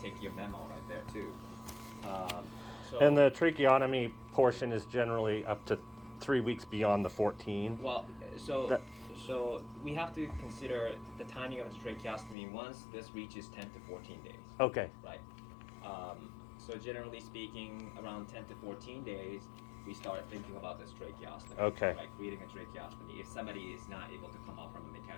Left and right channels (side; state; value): right; drops out; at 12.4 s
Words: your memo right there too. So And the tracheotomy portion is generally up to 3 weeks beyond the 14. well, so That- so we have to consider the timing of the tracheostomy once this reaches 10 to 14 days. Okay. Right. So generally speaking, around 10 to 14 days, we start thinking about this tracheostomy. Okay. Right, creating a tracheostomy if somebody is not able to come out from a